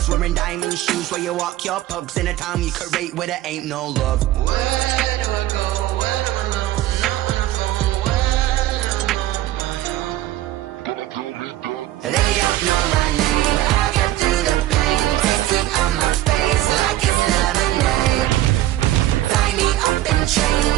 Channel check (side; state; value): left; quieter; 14.6 dB